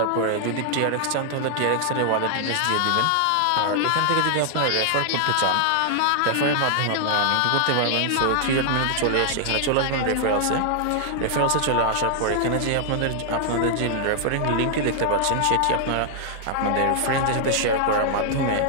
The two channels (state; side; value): different; both; correlation -0.01